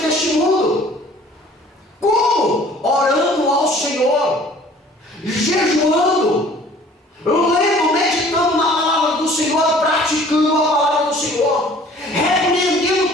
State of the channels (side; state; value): both; normal; correlation 0.52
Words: deste mundo. Como? Orando ao Senhor, jejuando, lendo, meditando na palavra do Senhor, praticando a palavra do Senhor, repreendendo